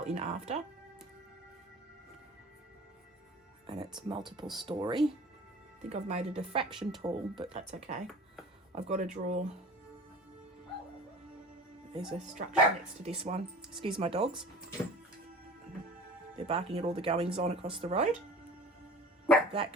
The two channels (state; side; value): normal; both; correlation 0.41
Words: in after. And it's multiple story. I think I've made it a fraction tall, but that's okay. I've got to draw... There's a structure next to this one. Excuse my dogs. They're barking at all the goings on across the road. That